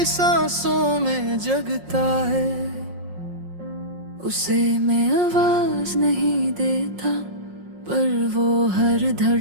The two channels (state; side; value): late; left; 5.5 ms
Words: सांसों में जगता है। उसे मैं आवाज नहीं देता, पर वो हर